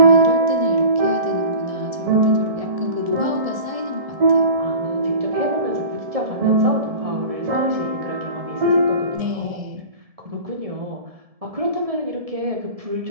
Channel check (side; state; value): left; late; 1.7 ms